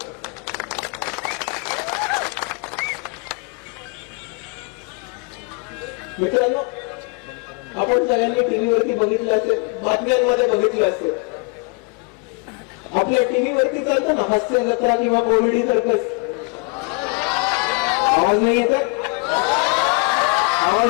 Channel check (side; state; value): right; quieter; 30.4 dB